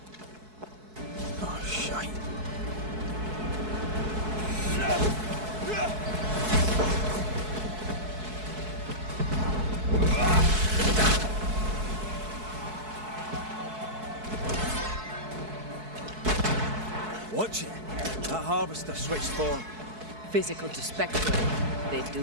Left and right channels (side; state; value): left; late; 4.6 ms